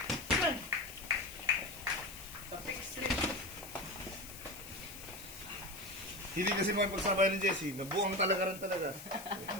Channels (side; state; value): left; noise; hiss, 13 dB below the sound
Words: Tapos straight. Hindi kasi mapagsabay ni Jessie. Nabuang talaga rin talaga.